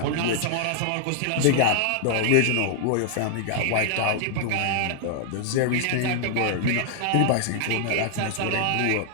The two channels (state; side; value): different; both; correlation 0.00